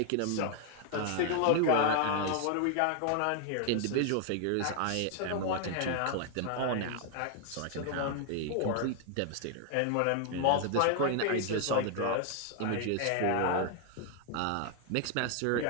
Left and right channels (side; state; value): both; different; correlation 0.00